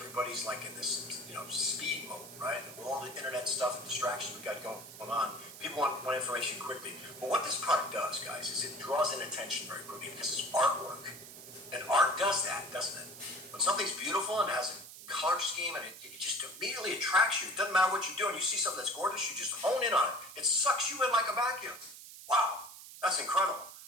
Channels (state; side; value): noise; right; hiss, 15 dB below the sound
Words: like in this, you know, speed mode, right? And with all the internet stuff and distractions we got going on, people want information quickly. But what this product does, guys, is it draws in attention very quickly because it's artwork. And art does that, doesn't it? When something's beautiful and has a color scheme and it just immediately attracts you. It doesn't matter what you're doing. You see something that's gorgeous, you just hone in on it. It sucks you in like a vacuum. Wow, that's incredible.